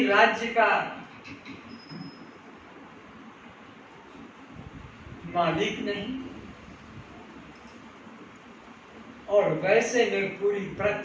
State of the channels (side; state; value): both; identical; correlation 1.00